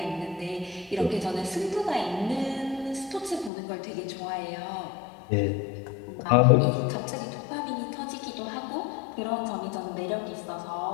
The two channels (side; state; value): right; drops out; at 3.5 s